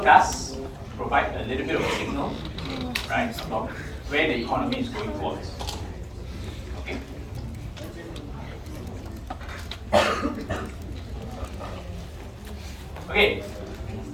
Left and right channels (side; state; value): both; identical; correlation 1.00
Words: does provide a little bit of a signal, right, about where the economy is going towards. Okay? Okay.